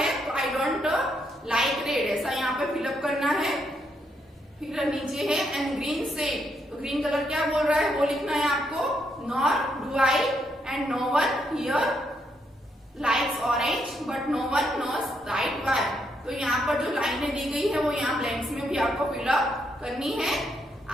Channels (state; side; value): normal; both; correlation 0.77